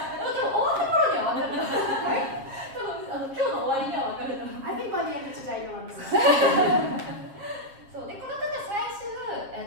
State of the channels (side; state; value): left; late; 7.4 ms